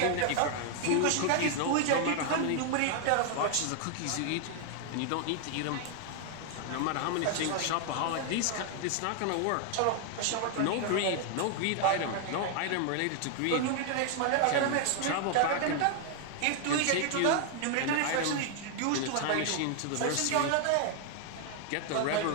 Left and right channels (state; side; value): different; both; correlation 0.00